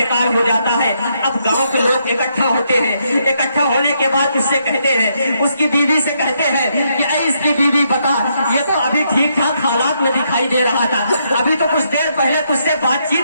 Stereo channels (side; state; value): both; inverted; correlation -0.76